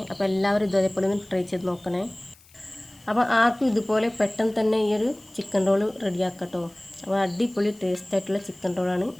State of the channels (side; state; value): left; noise; hiss, 27 dB below the sound